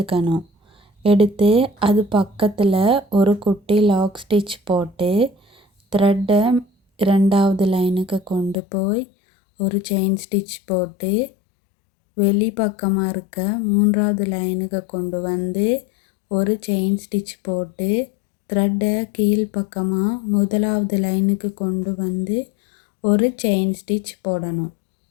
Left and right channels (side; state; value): right; drops out; at 8.6 s